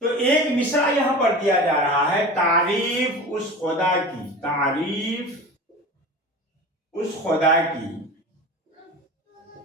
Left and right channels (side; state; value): both; normal; correlation 0.33